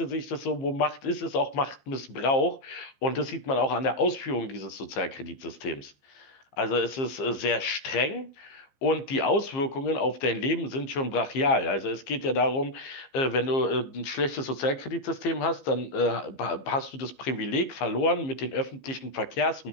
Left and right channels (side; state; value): right; late; 15 ms